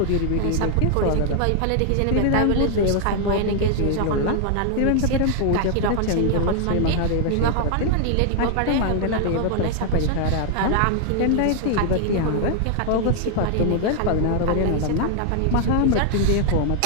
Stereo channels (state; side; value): different; both; correlation 0.00